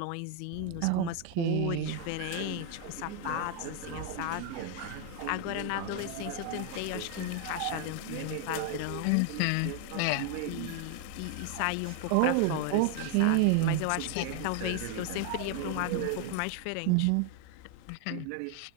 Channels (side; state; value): both; different; correlation 0.00